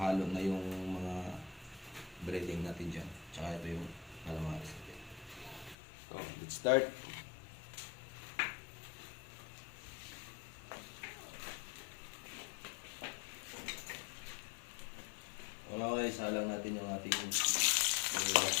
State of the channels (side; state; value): right; drops out; at 5.8 s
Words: na yung mga breading natin dyan. Tsaka ito yung calamares natin. So, let's start. Okay, salang natin yung ating